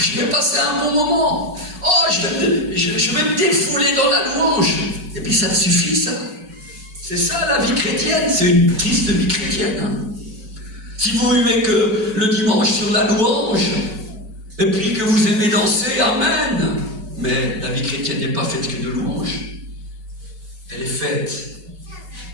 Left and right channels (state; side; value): late; left; 5.3 ms